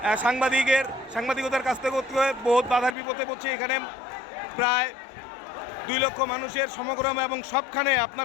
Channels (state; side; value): drops out; right; at 3.0 s